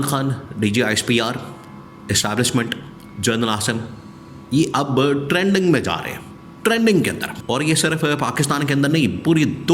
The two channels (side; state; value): both; identical; correlation 1.00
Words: Khan, DGISPR, establishment, general आसन ये अब ट्रेंडिंग में जा रहे हैं, ट्रेंडिंग के अंदर। और ये सिर्फ पाकिस्तान के अंदर नहीं, पूरी